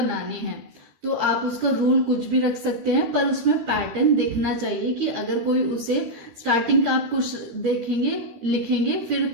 हैं। तो आप उसका रूल कुछ भी रख सकते हैं, पर उसमें पैटर्न दिखना चाहिए कि अगर कोई उसे स्टार्टिंग का आप कुछ देखेंगे, लिखेंगे, फिर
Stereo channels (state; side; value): late; left; 13 ms